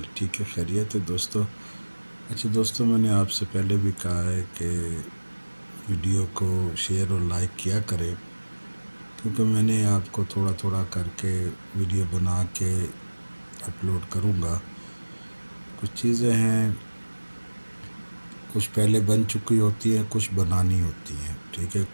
ٹھیک ہے، خیریت ہے دوستو؟ اچھا دوستو، میں نے آپ سے پہلے بھی کہا ہے کہ ویڈیو کو شیئر اور لائک کیا کریں، کیونکہ میں نے آپ کو تھوڑا تھوڑا کر کے ویڈیو بنا کے اپلوڈ کروں گا۔ کچھ چیزیں ہیں، کچھ پہلے بن چکی ہوتی ہیں، کچھ بنانی ہوتی ہیں، ٹھیک ہے؟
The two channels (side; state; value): both; inverted; correlation -1.00